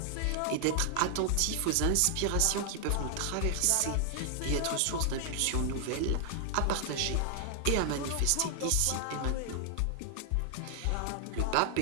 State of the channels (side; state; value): both; different; correlation 0.00